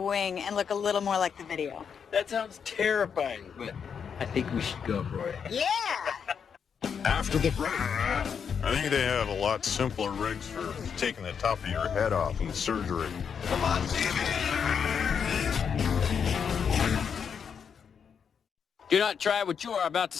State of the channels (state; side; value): quieter; right; 7.0 dB